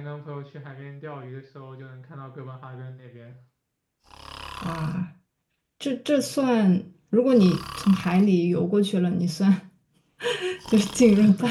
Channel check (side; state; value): both; identical; correlation 1.00